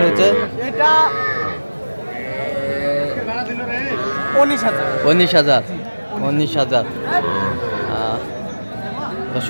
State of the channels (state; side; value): inverted; both; correlation -1.00